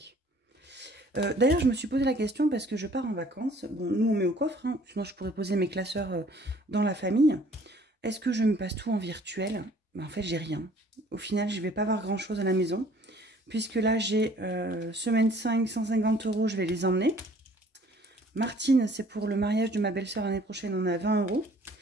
D'ailleurs, je me suis posé la question parce que je pars en vacances. Bon, nous, on met au coffre, hein, sinon je pourrais poser mes classeurs dans la famille. Est-ce que je me passe tout en virtuel? Ben, en fait, j'ai rien. Au final, je ne vais pas avoir grand-chose à la maison. Puisque là, j'ai semaine 5, 150 €, je vais les emmener. Martine, c'est pour le mariage de ma belle-sœur l'année prochaine, on a 20 €.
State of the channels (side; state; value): both; normal; correlation 0.55